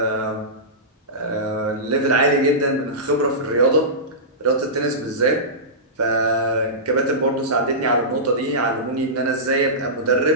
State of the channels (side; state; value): both; normal; correlation -0.17